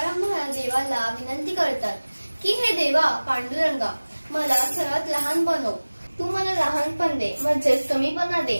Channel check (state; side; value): inverted; both; correlation -1.00